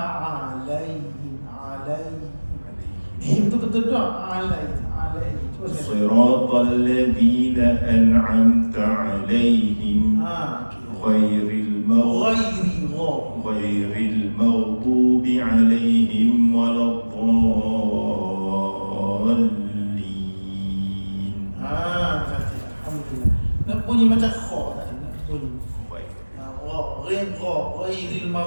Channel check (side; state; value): both; inverted; correlation -1.00